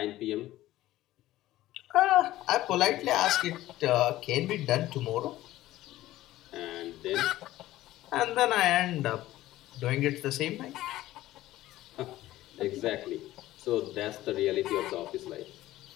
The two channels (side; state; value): right; quieter; 15.5 dB